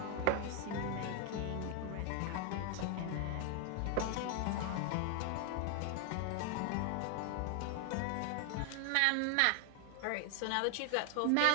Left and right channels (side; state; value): both; different; correlation 0.00